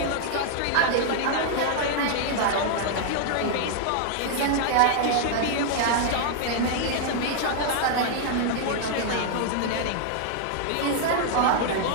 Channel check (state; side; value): different; both; correlation 0.00